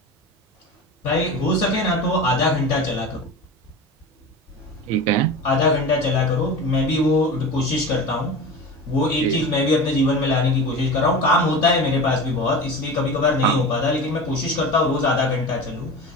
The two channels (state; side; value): normal; both; correlation 0.30